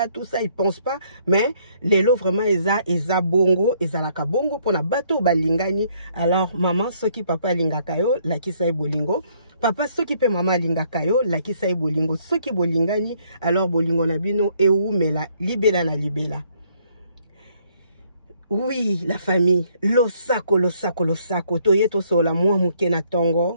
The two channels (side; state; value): both; inverted; correlation -0.67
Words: tout ça, ils pensent pas, mais les lots vraiment, eza bongo, ezalaka bongo, pour na bateau balingani. Alors, maman, ce qui papa lingakayo, la qui sa bolingo. Papa, ce qui peut maman lingakayo, la qui sa bolingo. Ce qui bolingani, alors bolingo nabino, et où, mais la, libela na libela. Oui, la famille, losako, toye to sola mwa muke na